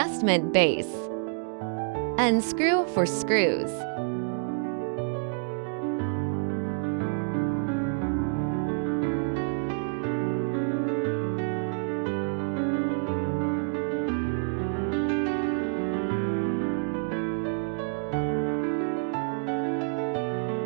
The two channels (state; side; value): silent; left; 59 dB below the other